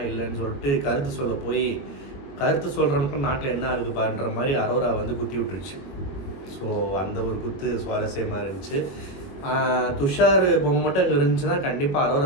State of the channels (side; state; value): right; late; 21 ms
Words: இல்லைன்னு சொல்லிட்டு கருத்து சொல்ல போய் கருத்து சொல்கிறவனுக்கும் நாட்டில் என்ன ஆகுது பாருன்ற மாதிரி அரோரா வந்து குத்தி விட்டுருச்சு. ஸோ அந்த ஒரு குத்து சுவாரஸ்யமாக இருந்துச்சு. துஷார் பொம்மை மட்டும் அங்கே இருந்துச்சுன்னா கண்டிப்பாக